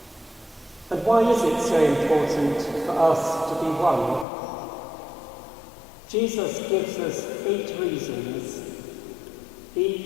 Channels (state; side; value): drops out; right; at 4.2 s